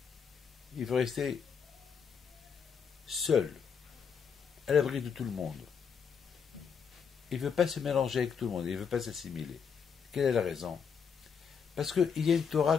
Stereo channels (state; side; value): quieter; right; 6.6 dB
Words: il veut rester seul, à l'abri de tout le monde. Il ne veut pas se mélanger avec tout le monde, il ne veut pas s'assimiler. Quelle est la raison? Parce qu'il y a une Torah